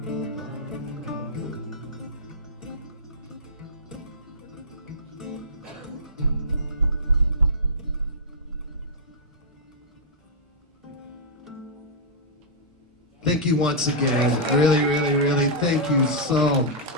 Thank you once again. Really, really, really, thank you so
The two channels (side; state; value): both; normal; correlation -0.13